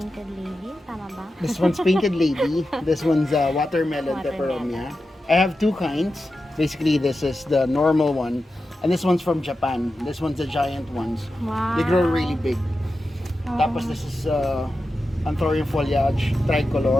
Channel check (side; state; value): both; normal; correlation 0.91